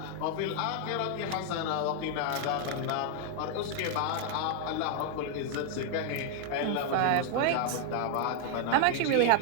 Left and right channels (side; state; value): both; different; correlation 0.00